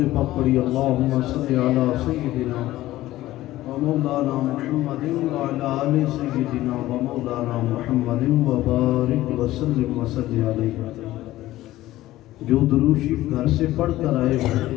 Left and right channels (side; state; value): right; quieter; 15.8 dB